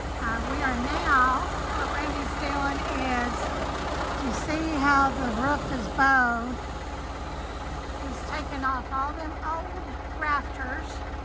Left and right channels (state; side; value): identical; both; correlation 1.00